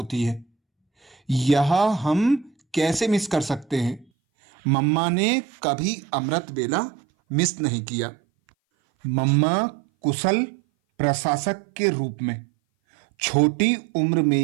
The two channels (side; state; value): left; drops out; at 4.0 s